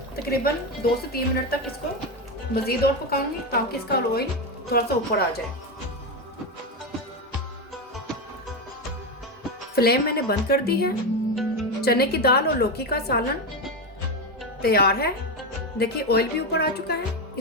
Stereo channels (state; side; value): normal; both; correlation 0.13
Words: तकरीबन 2 से 3 मिनट तक इसको मज़ीद और पकाऊंगी ताकि इसका ऑयल थोड़ा सा ऊपर आ जाए। फ्लेम मैंने बंद कर दी है। चने की दाल और लौकी का सालन तैयार है। देखिए ऑयल भी ऊपर आ चुका है।